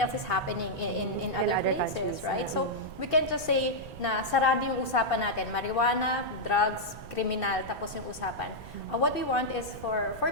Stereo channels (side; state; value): right; noise; rumble, 16 dB below the sound